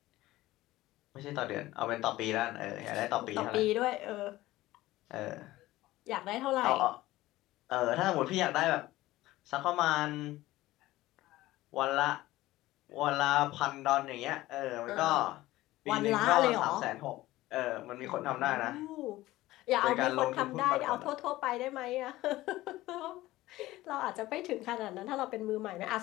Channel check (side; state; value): right; quieter; 17.0 dB